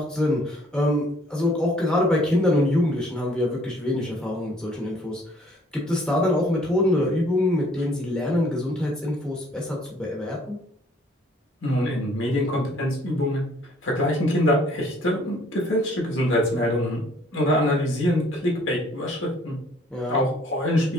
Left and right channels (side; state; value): both; normal; correlation 0.59